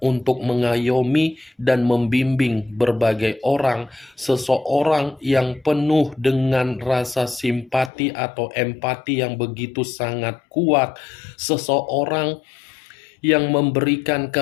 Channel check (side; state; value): right; drops out; at 7.9 s